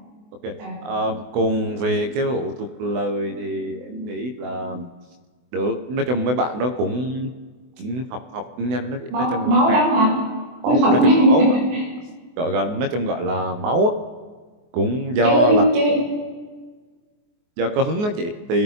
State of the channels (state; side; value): late; left; 24 ms